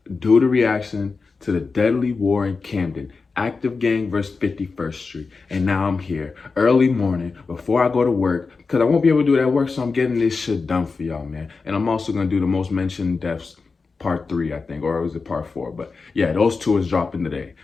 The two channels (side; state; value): right; quieter; 4.5 dB